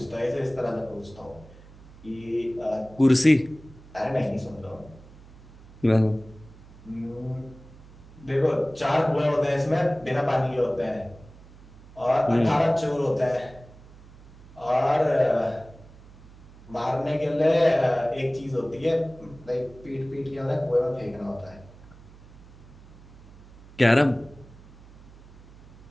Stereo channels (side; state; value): right; noise; hum, 21 dB below the sound